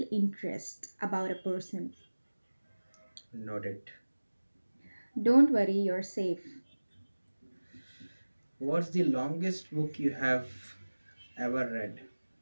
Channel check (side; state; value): both; inverted; correlation -1.00